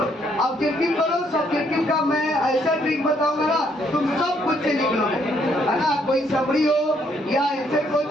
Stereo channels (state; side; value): normal; both; correlation 0.70